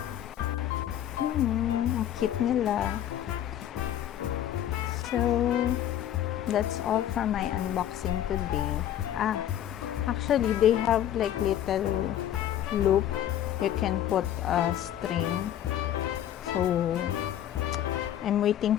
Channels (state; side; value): quieter; right; 11.2 dB